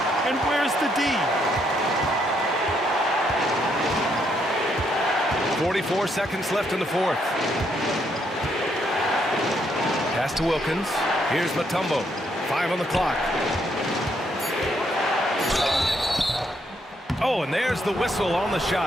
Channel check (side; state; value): both; normal; correlation 0.74